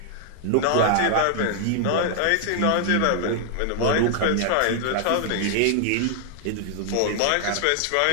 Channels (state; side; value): different; both; correlation 0.00